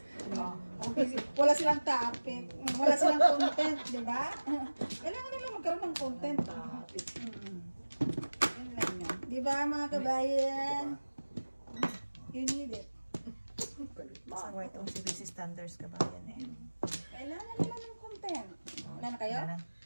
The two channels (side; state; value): both; inverted; correlation -1.00